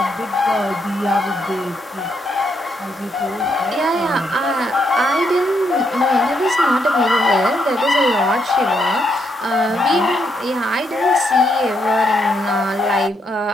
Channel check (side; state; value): both; normal; correlation 0.77